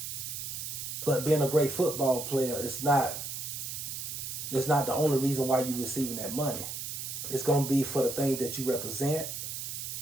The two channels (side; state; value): right; noise; hiss, 6 dB below the sound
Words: But being a great football player is not the only reason why you're receiving that money. It's going to be for the things that you represent,